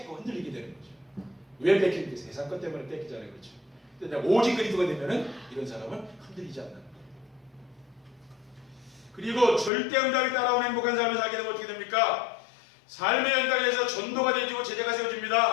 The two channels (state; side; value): drops out; right; at 9.7 s